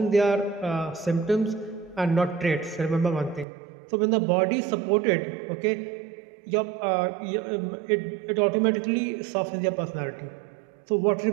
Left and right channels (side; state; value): left; drops out; at 3.5 s